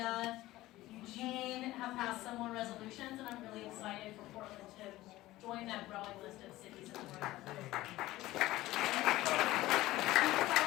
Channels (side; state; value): right; quieter; 16.9 dB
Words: Eugene have passed similar resolutions, and I'm really excited for Portland to join that growing list of cities in the world.